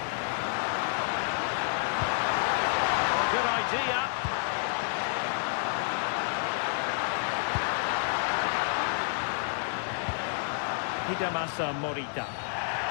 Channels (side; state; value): right; silent; digital silence